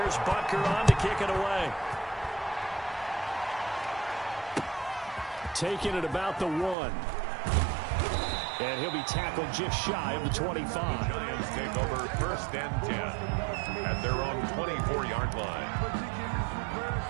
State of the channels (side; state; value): left; drops out; at 6.8 s